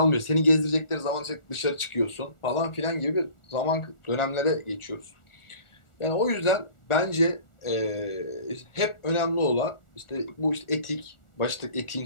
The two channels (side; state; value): right; late; 1.4 ms